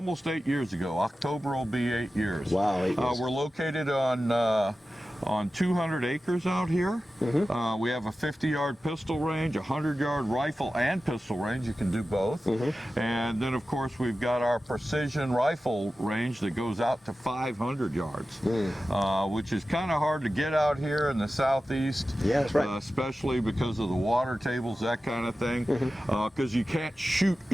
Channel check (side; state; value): both; normal; correlation 0.94